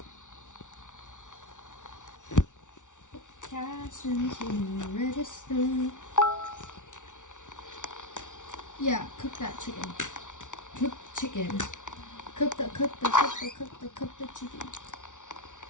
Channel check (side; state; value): right; late; 0.86 ms